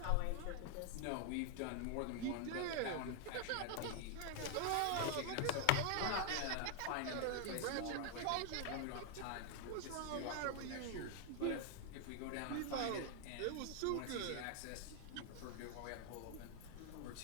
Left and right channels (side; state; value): both; different; correlation 0.00